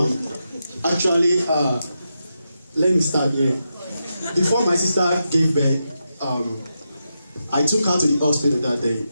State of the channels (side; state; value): both; inverted; correlation -0.86